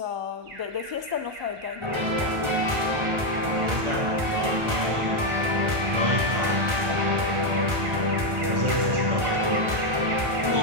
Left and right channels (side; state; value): left; late; 1.3 ms